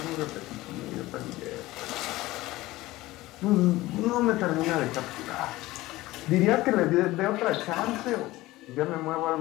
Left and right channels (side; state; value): right; quieter; 18.2 dB